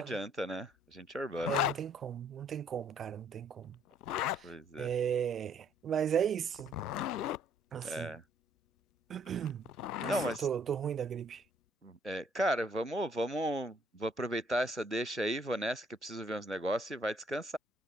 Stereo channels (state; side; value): normal; both; correlation 0.64